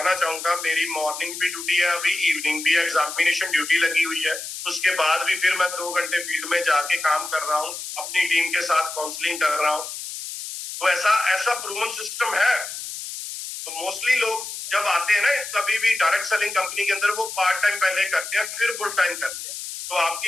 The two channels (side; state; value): left; noise; hiss, 8 dB below the sound